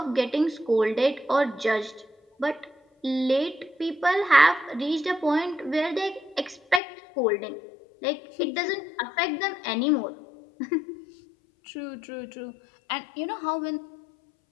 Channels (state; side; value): drops out; right; at 6.8 s